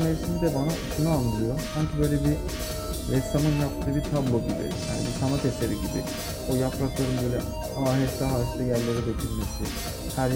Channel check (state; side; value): identical; both; correlation 1.00